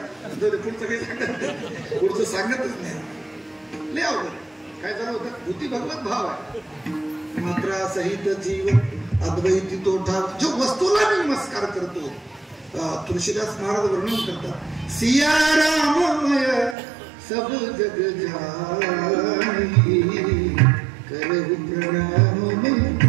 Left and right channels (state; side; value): drops out; left; at 16.8 s